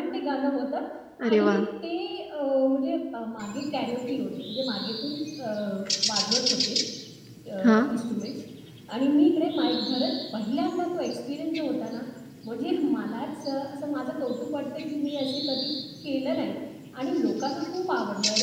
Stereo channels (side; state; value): both; identical; correlation 1.00